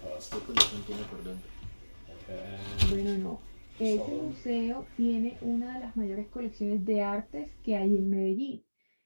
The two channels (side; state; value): both; inverted; correlation -1.00